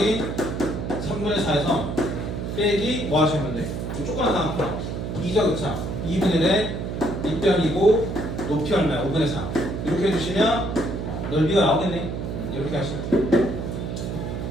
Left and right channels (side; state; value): right; noise; hum, 4 dB below the sound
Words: 3분의 4에서 빼기 뭐 하시면 돼? 조그만 상황 2죠, 그쵸? 2분의 1에 밑변이고 높이 얼마야? 5분의 4. 이렇게 해주시면 넓이가 나오겠네. 이렇게 하시면 돼요.